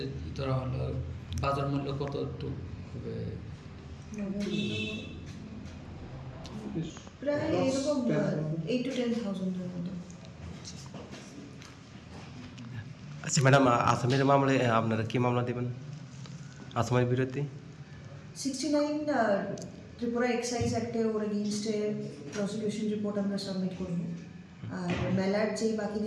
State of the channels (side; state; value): both; identical; correlation 1.00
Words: ধরা হলো বাজার মূল্য কত একটু প্রায় এরকম 8 to 10,000 মতো। আচ্ছা ম্যাডাম, আসামের মামলায় আপনারা কি মামলা দেবেন আসামের বিরুদ্ধে? 69 ত্রিপুরা এক্সাইজ অ্যাক্টে ওর এগেইনস্টে প্রসিকিউশন রিপোর্ট আমরা সাবমিট করব। আর মেলার যে বাকি